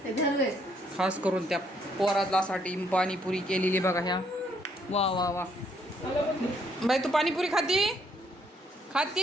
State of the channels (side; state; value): both; normal; correlation 0.69